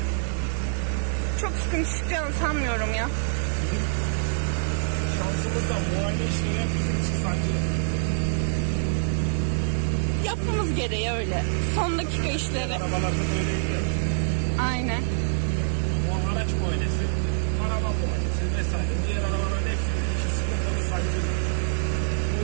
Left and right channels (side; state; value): left; silent; digital silence